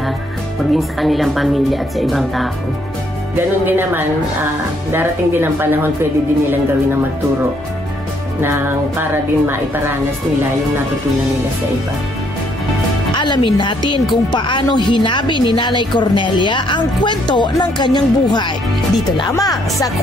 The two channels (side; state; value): both; normal; correlation 0.70